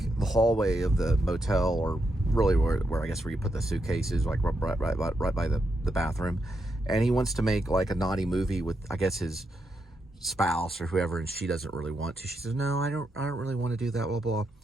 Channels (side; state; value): both; normal; correlation 0.83